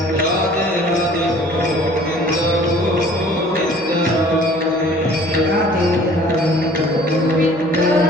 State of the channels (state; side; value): noise; right; hum, 29 dB below the sound